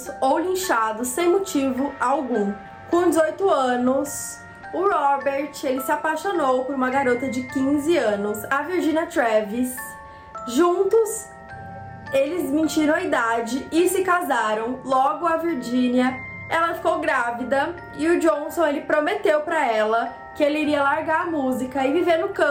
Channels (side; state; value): both; identical; correlation 1.00